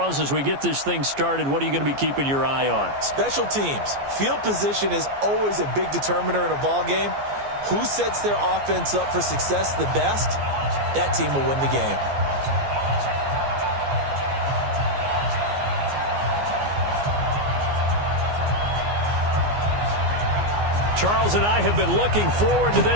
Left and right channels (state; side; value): late; left; 14 ms